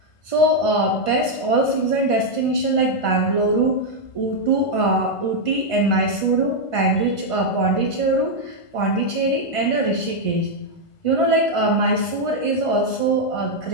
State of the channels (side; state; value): right; late; 1.5 ms